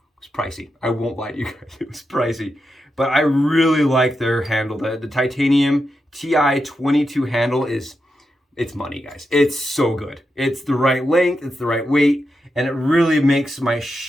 pricey. I won't lie to you guys. It was pricey. But I really like their handle. The titanium TI-22 handle is, it's money, guys. It's so good. It's the right length, it's the right weight, and it really makes my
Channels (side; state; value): both; normal; correlation 0.87